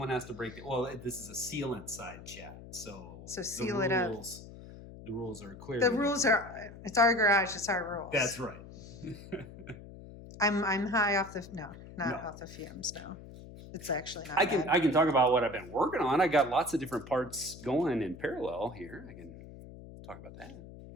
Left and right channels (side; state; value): left; noise; hum, 15 dB below the sound